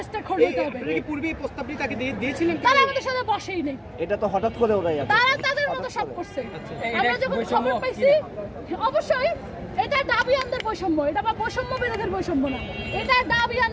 স্টেক হোল্ডার হতে হবে। আপনি কি পূর্বে এই প্রস্তাবটি তাকে দিয়েছিলেন? তারা আমাদের সাথে বসেই নেই, এটা তো হঠাৎ করে ওরাই তারা তাদের মতো সব করছে। আমরা যখন খবর পাইছি, অবশ্যই এটা দাবিয়ানদের বৈষম্য, এটা বা বৈষম্য বিরোধের বৈষম্য না, এটা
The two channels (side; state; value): both; identical; correlation 1.00